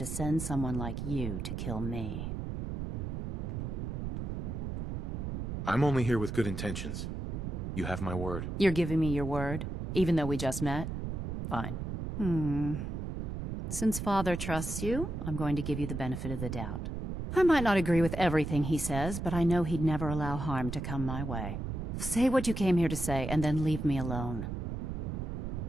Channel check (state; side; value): noise; right; rumble, 4 dB below the sound